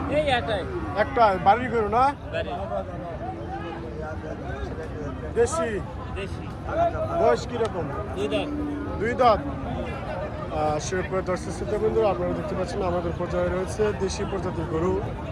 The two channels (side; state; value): both; identical; correlation 1.00